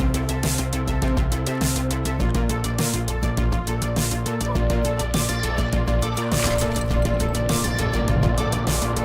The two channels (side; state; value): both; identical; correlation 1.00